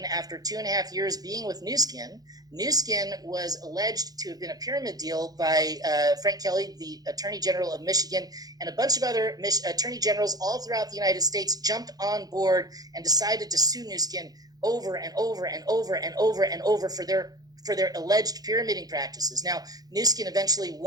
after 2.5 years being with Nu Skin, Nu Skin was alleged to have been a pyramid deal by Frank Kelly, the Attorney General of Michigan, and a bunch of other attorney generals all throughout the United States jumped on board and decided to sue Nu Skin over and over and over and over and over for their alleged pyramiding practices. Now, Nu Skin eventually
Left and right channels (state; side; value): late; left; 0.19 ms